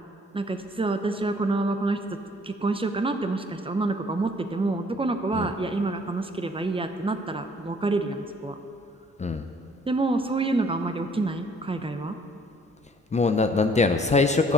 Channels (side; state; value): both; normal; correlation 0.59